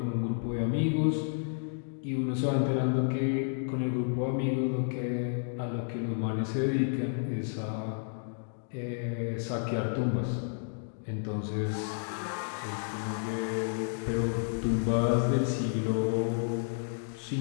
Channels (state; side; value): silent; right; digital silence